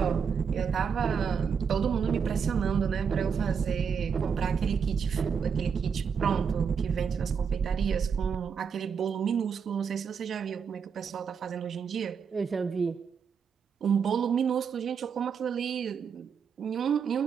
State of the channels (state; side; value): quieter; left; 6.5 dB